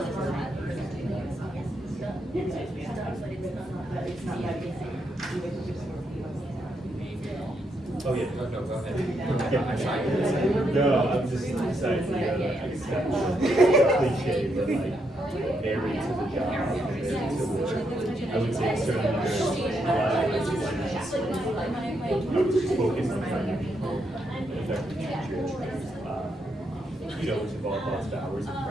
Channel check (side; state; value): both; normal; correlation 0.79